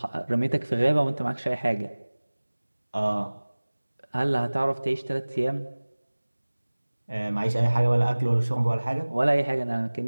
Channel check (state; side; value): inverted; both; correlation -1.00